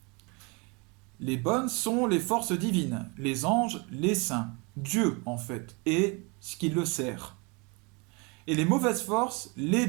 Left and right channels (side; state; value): left; quieter; 30.2 dB